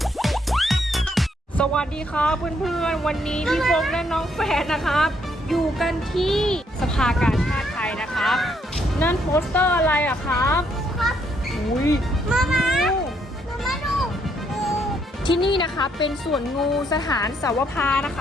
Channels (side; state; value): both; normal; correlation 0.72